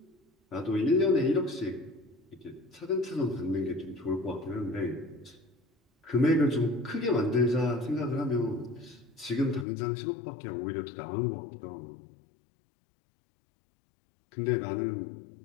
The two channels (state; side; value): drops out; right; at 9.7 s